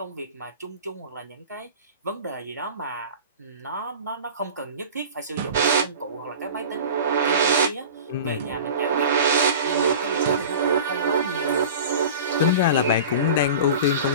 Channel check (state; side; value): inverted; both; correlation -0.36